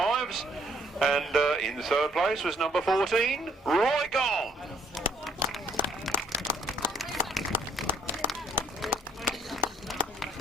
And in third place was number 14, Roy Gong.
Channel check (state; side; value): normal; both; correlation 0.65